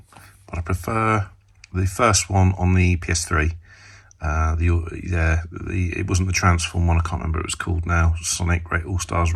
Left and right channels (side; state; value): both; identical; correlation 1.00